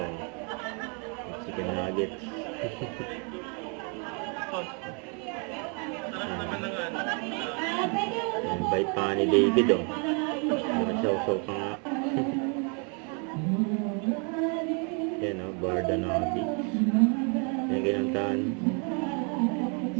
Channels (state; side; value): quieter; left; 37.4 dB